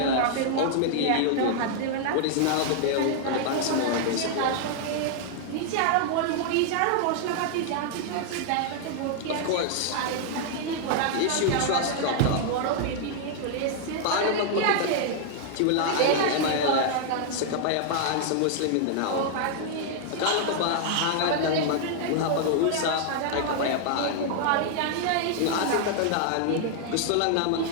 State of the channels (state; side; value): different; both; correlation -0.01